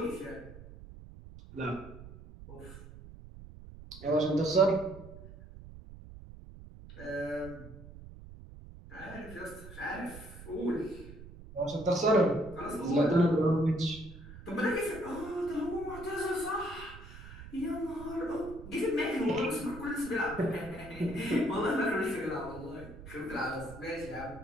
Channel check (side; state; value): right; noise; rumble, 15 dB below the sound